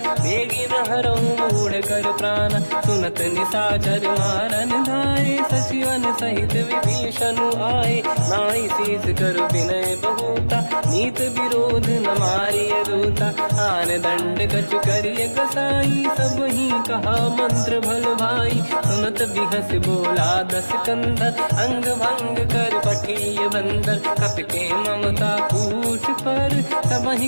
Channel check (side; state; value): both; inverted; correlation -1.00